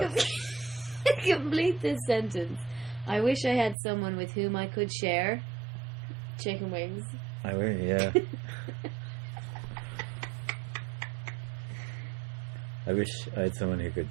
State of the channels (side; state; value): left; drops out; at 3.8 s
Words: Complete this sentence. I wish I had someone with whom I could share chicken wings. I will, yeah. I wish I had someone who